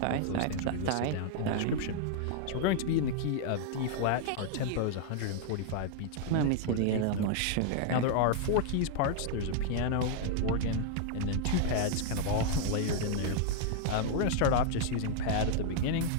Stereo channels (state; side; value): different; both; correlation -0.01